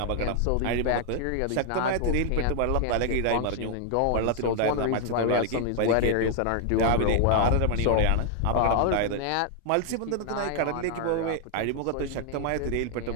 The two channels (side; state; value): both; different; correlation 0.00